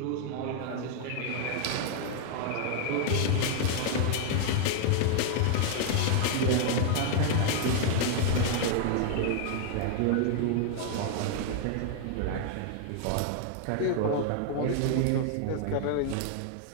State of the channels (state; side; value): different; both; correlation 0.00